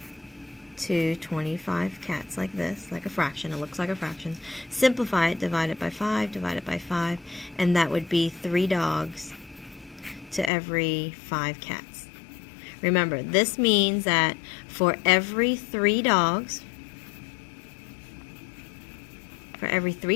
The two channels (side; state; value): right; drops out; at 10.5 s